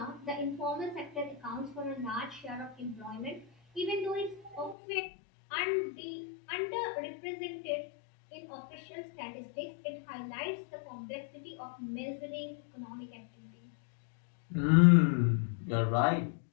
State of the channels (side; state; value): right; drops out; at 4.8 s